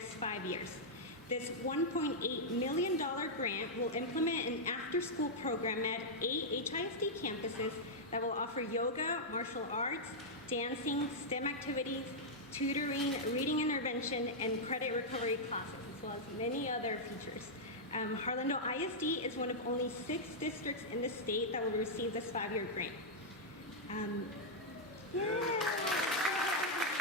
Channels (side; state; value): both; normal; correlation -0.06